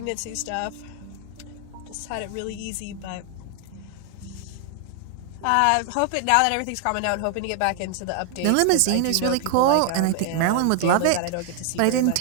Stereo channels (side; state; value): both; different; correlation 0.00